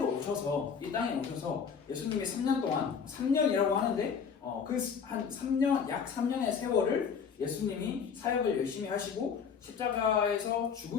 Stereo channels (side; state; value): right; quieter; 6.5 dB